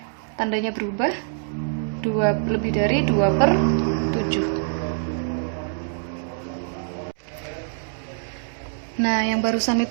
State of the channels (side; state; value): left; silent; digital silence